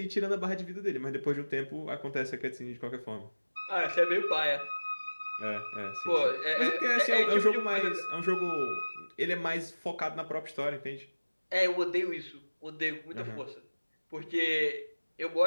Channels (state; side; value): inverted; both; correlation -1.00